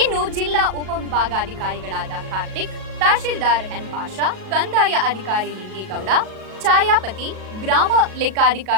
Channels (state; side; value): late; left; 37 ms